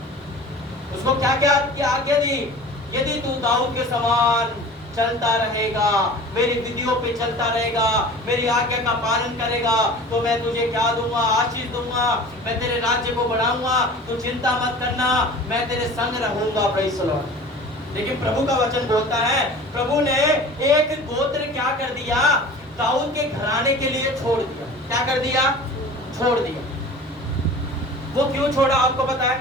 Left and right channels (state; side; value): normal; both; correlation 0.40